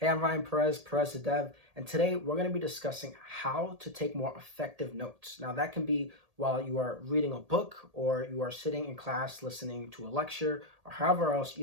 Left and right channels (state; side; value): late; left; 1.8 ms